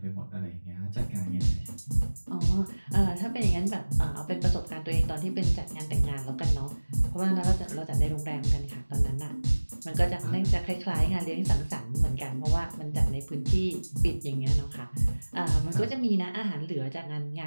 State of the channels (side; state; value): both; inverted; correlation -1.00